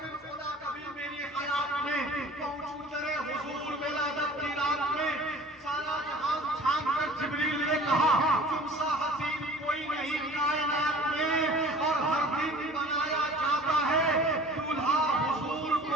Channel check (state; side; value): normal; both; correlation 0.46